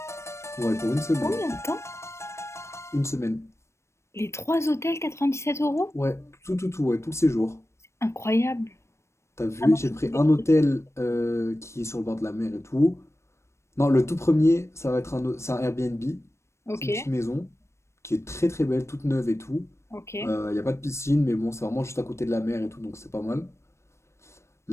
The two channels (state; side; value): late; right; 0.13 ms